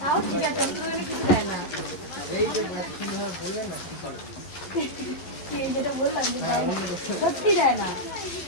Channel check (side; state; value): right; late; 11 ms